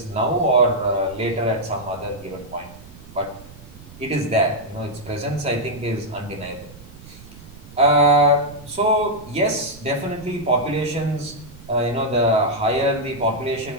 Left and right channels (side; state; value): right; noise; rumble, 19 dB below the sound